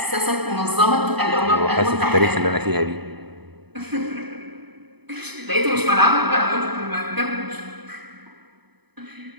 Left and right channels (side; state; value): left; late; 0.98 ms